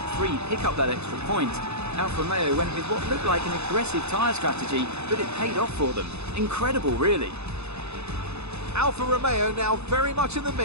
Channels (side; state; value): left; late; 0.80 ms